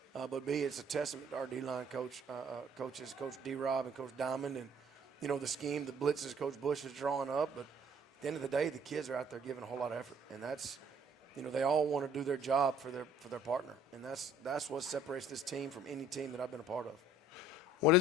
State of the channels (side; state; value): both; normal; correlation 0.57